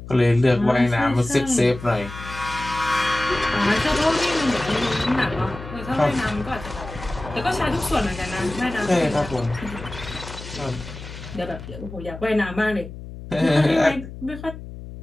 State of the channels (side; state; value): left; noise; hum, 12 dB below the sound